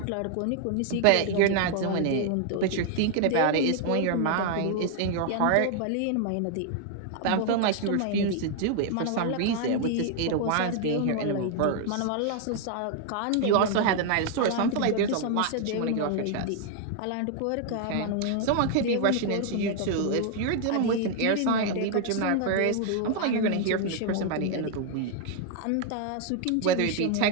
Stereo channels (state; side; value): different; both; correlation 0.00